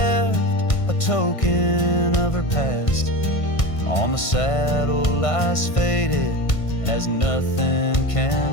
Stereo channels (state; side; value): late; right; 1.5 ms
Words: a token of her past, on the saddle lies faded as nothing